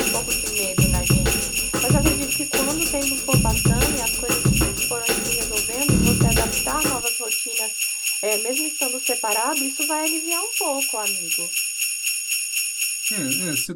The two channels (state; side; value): identical; both; correlation 1.00